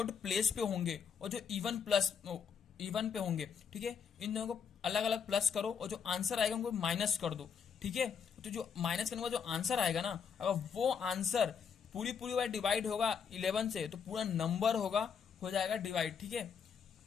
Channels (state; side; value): quieter; right; 6.9 dB